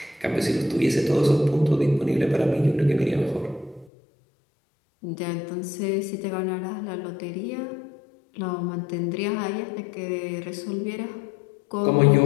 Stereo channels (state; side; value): drops out; right; at 3.9 s